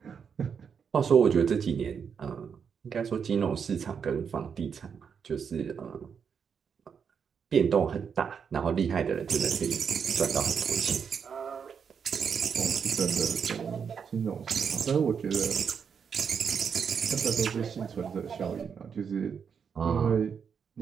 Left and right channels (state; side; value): quieter; left; 6.8 dB